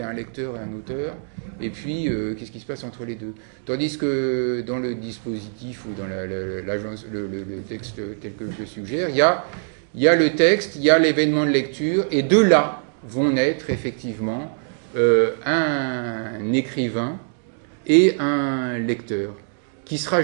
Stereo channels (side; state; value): left; silent; digital silence